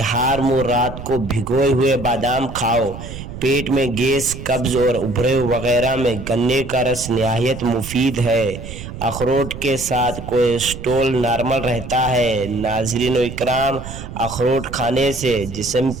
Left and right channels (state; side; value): noise; right; rumble, 11 dB below the sound